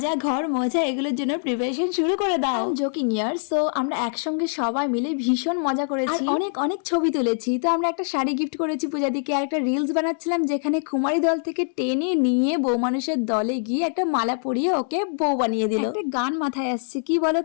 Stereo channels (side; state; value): right; silent; digital silence